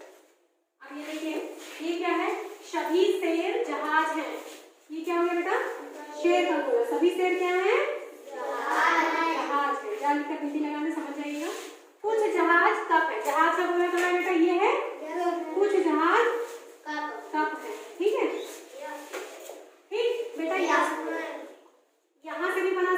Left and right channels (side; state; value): both; identical; correlation 1.00